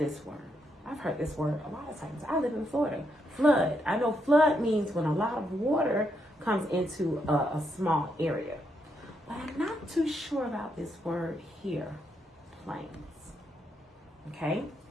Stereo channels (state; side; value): normal; both; correlation 0.79